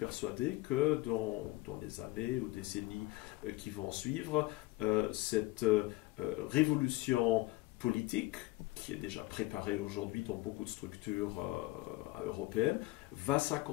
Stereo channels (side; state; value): right; quieter; 19.4 dB